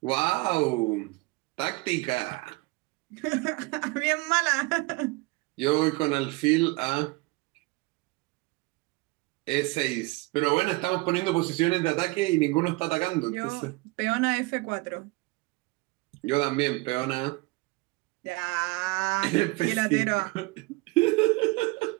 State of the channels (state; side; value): quieter; left; 24.2 dB